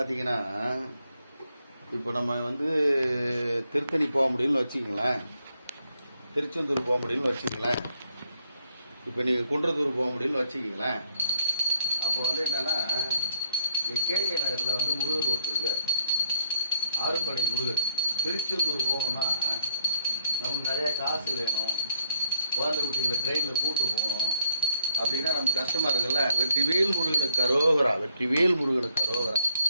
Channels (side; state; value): both; inverted; correlation -0.73